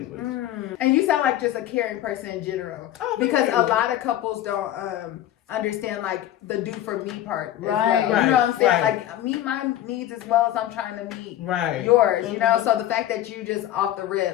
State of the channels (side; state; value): right; quieter; 12.7 dB